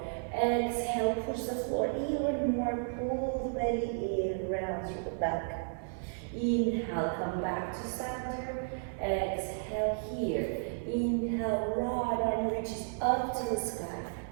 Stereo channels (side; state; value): left; silent; 56 dB below the other